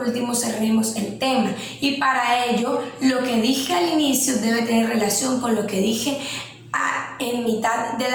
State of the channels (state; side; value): identical; both; correlation 1.00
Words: cerremos el tema, y para ello lo que dije al inicio debe tener relación con lo que dije en mitad